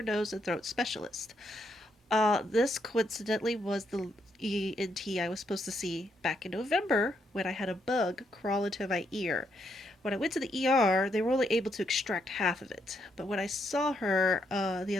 nose, and throat specialist. This coincidentally was the ENT I was supposed to see back in November when I had a bug crawl into my ear. When I went to the ER, they were only able to extract half of it. But when I saw her the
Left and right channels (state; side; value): normal; both; correlation 0.77